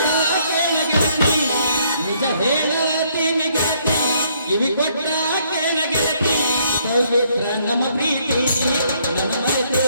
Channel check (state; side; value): inverted; both; correlation -0.68